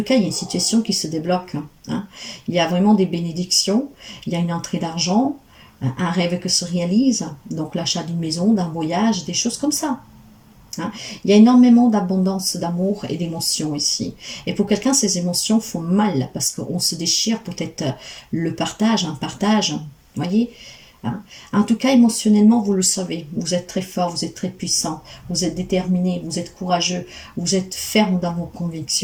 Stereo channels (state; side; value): identical; both; correlation 1.00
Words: cas, il y a une situation qui se débloque. Hein. Il y a vraiment des bénédictions, il y a une entrée d'argent, un rêve qui se réalise, donc l'achat d'une maison, d'un voyage, des choses comme ça. Hein. Il y a énormément d'abondance d'amour et d'émotions ici. Et pour quelqu'un, ces émotions font mal parce qu'on se déchire peut-être le partage, un partage, voyez. Hein. En tout cas, émotionnellement, vous le savez, vous êtes très fort, vous êtes très puissant, vous êtes déterminé, vous êtes courageux, vous êtes ferme dans vos